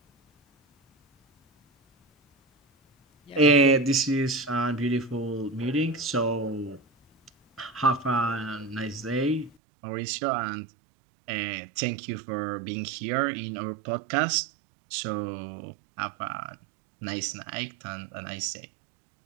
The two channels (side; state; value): left; drops out; at 9.5 s